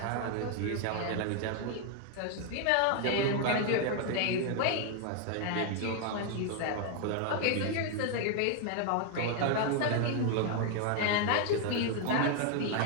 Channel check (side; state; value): both; different; correlation 0.00